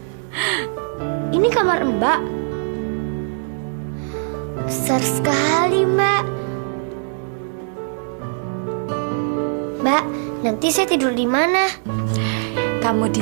Ini kamar Mbak. Besar sekali, Mbak. Mbak, nanti saya tidur di mana? Kamu di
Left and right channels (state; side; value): silent; left; digital silence